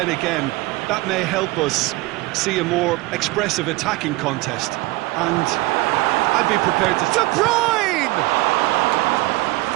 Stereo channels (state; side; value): quieter; left; 20.7 dB